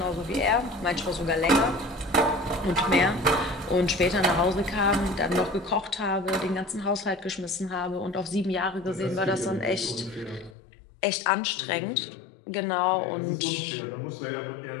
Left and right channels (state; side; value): drops out; right; at 10.6 s